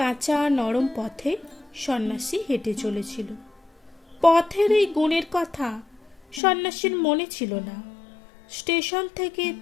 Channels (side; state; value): right; drops out; at 6.4 s